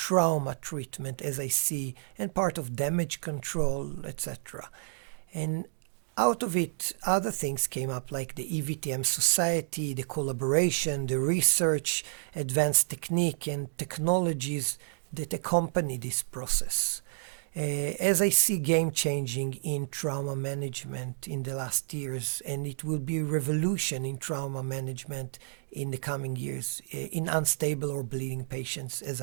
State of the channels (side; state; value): left; silent; digital silence